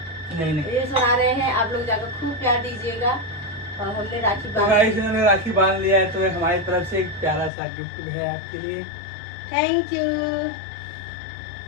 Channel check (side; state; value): right; drops out; at 7.5 s